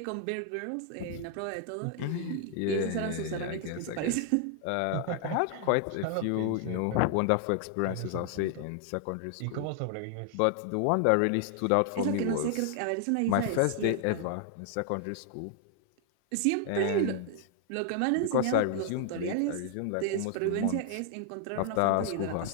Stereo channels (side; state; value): both; different; correlation 0.00